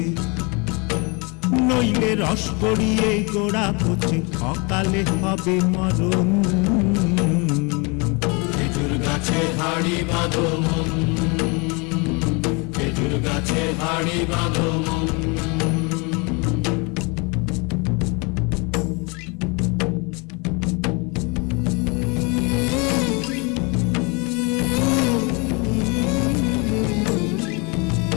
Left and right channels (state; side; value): quieter; right; 30.4 dB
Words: নইলে রস গড়িয়ে গোড়া পচে, অকালে হবে মরণ। খেজুর গাছে হাড়ি বাঁধো মন, খেজুর গাছে হাড়ি বাঁধো মন।